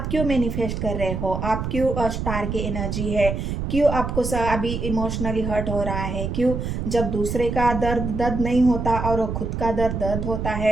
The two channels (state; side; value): noise; right; rumble, 3 dB below the sound